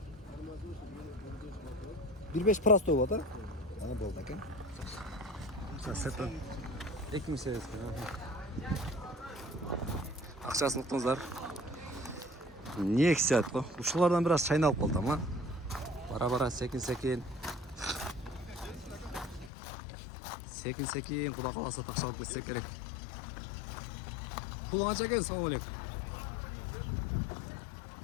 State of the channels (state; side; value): drops out; right; at 19.5 s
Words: 1.5 просто болуп калат, а? Ана болду экен. Сеттен 2008. Акчасын уктуңуздар. Nexia го. Ушулардан бир аз чайналып калдым, а? Бара-бара секин. Секин, куда каласа такшалып кетсек керек. Пулу канча экен? Салам алейкум.